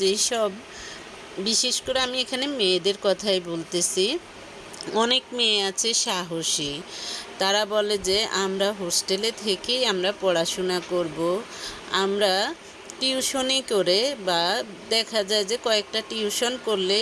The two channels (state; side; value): identical; both; correlation 1.00